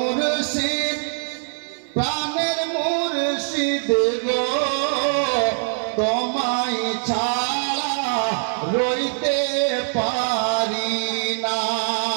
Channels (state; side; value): silent; left; 64 dB below the other